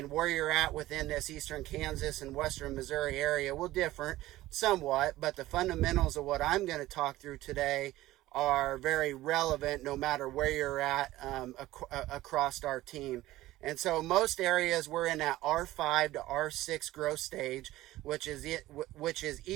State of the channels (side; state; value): left; quieter; 16.4 dB